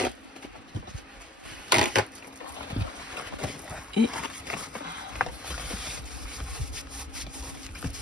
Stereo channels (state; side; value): normal; both; correlation 0.51